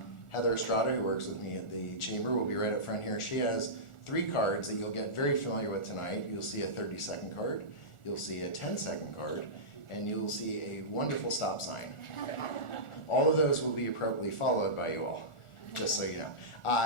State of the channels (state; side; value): late; right; 1.4 ms